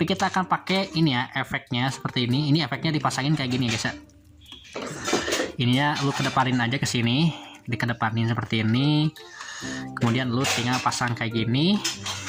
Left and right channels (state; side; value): identical; both; correlation 1.00